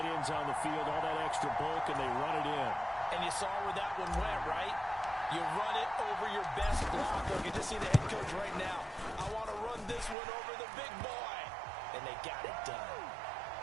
ends on the field, all that extra bulk, and they run it in. And you saw where that one went, right? You run it over your best blocker. You can just see the head coach right now. I want to run this one over the big boy. And they got it done.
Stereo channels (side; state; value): left; drops out; at 10.2 s